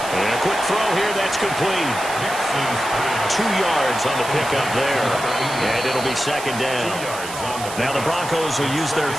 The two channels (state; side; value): noise; right; hiss, 11 dB below the sound